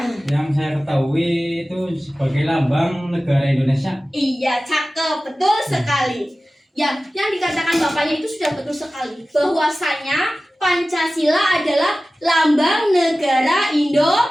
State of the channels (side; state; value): both; normal; correlation 0.96